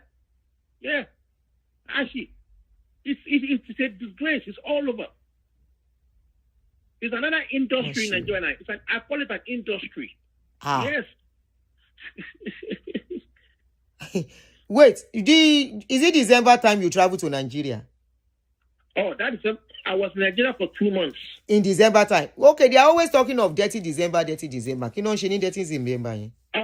Yeah. Actually, it's a disgrace. It's all over. It's another industry in Nigeria. I call it an industry. Yes. Wait, is it December time you travel to Nigeria? Oh, I was in Nigeria for 2 months. In December time. Okay, they are always talking of dirty December. You know, she need dirty December.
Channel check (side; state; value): both; identical; correlation 1.00